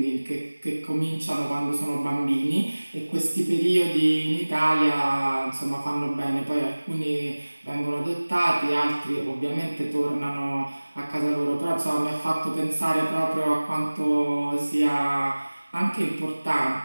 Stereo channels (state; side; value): inverted; both; correlation -1.00